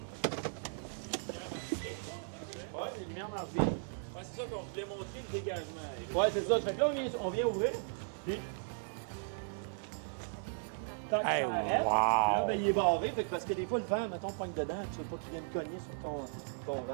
Ouais, les lumières marchent bien. Ouais, c'est ça qu'on voulait montrer le dégagement. Ouais, c'est ça. Fait que là, on vient ouvrir, puis tant que ça arrête, wow. puis là, ben, il est barré. Fait que parce que des fois, le vent, mettons, pogne dedans, tu veux pas qu'il vienne cogner sur ton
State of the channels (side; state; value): left; silent; digital silence